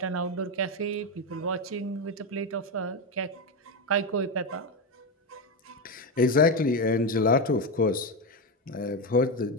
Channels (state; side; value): normal; both; correlation 0.11